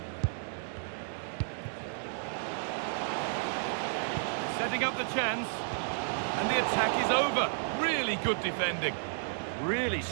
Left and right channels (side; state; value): left; silent; digital silence